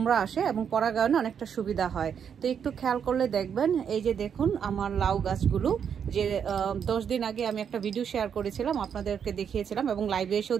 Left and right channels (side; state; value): left; quieter; 7.7 dB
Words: আসে এবং পরাগায়নে অনেকটা সুবিধা হয়। তো একটু খেয়াল করলে দেখবেন, এই যে দেখুন আমার লাউ গাছগুলো, যে 10 দিন আগে আমি একটা ভিডিও শেয়ার করেছিলাম, আপনাদেরকে দেখিয়েছিলাম এবং লাইভে এসেও